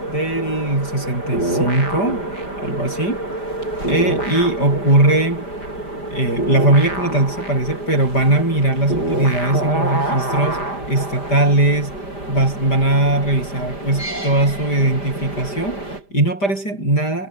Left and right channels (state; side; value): late; right; 5.0 ms